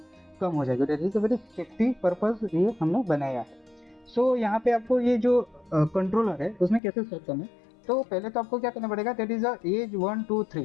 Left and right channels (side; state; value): right; drops out; at 6.8 s